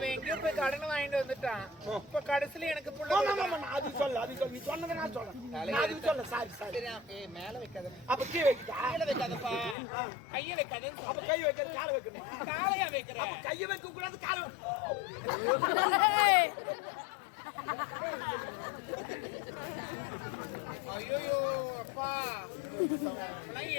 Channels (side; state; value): right; drops out; at 9.8 s